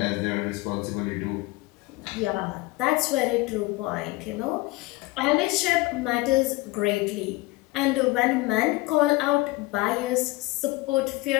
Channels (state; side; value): quieter; right; 21.5 dB